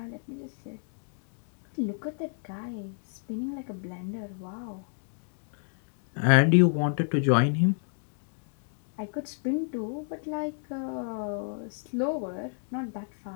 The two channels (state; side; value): silent; right; digital silence